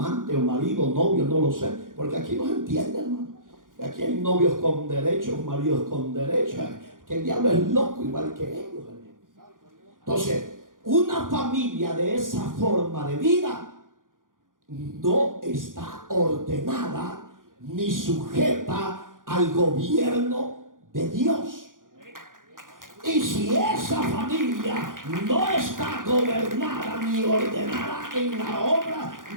o marido, novio, no lo sé, porque aquí no se entiende, hermano. Aquí hay novios con derechos, maridos con derechos, que el diablo es loco igual que ellos. Entonces, una familia de esa forma de vida no está ordenada ni sujeta al gobierno de Dios. Y si esa familia no está gobernada ni ordenada en la obra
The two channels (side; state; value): left; late; 0.89 ms